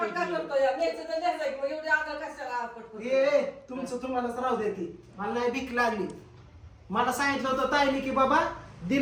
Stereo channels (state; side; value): identical; both; correlation 1.00